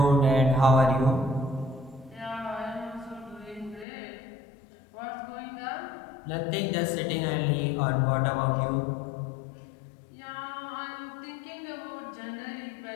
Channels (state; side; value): drops out; right; at 3.9 s